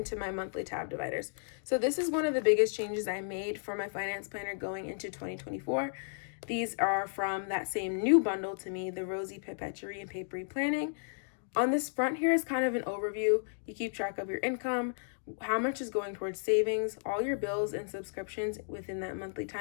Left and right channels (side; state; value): right; silent; digital silence